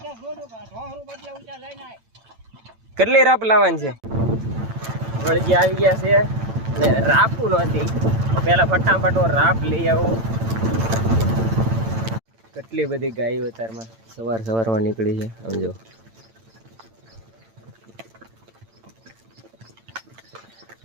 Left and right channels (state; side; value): late; left; 8.9 ms